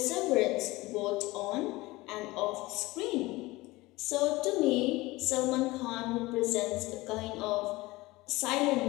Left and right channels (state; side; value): quieter; right; 20.6 dB